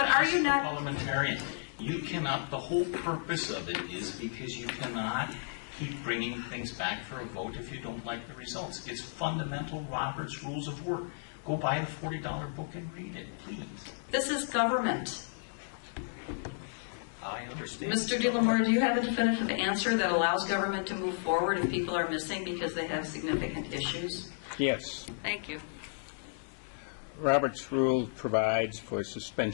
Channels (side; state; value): right; silent; digital silence